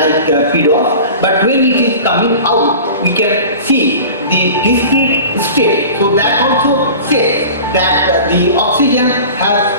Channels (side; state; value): both; inverted; correlation -0.38